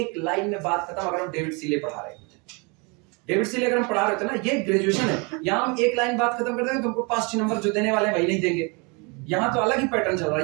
लाइन में बात खत्म। अगर हम डेविड सीले पढ़ा रहे होते, डेविड सीले अगर हम पढ़ा रहे थे ना, ये ग्रेजुएशन है, यहाँ हम एक लाइन बात खत्म कर देंगे, तुमको 5-6 नंबर जो देने वाले हैं वही नहीं देंगे। यहाँ तो अलग ही पैटर्न चल रहा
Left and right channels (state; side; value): quieter; left; 31.0 dB